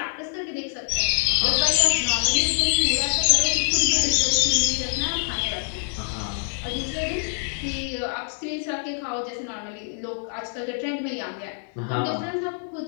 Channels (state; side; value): silent; right; 60 dB below the other